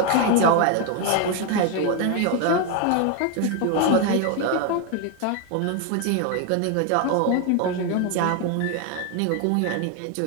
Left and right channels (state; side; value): different; both; correlation 0.01